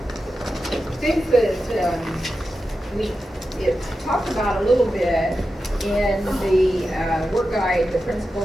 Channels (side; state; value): both; normal; correlation 0.91